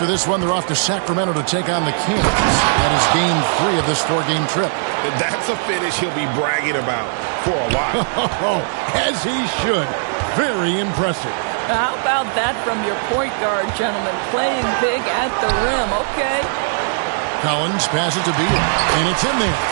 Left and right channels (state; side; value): silent; left; digital silence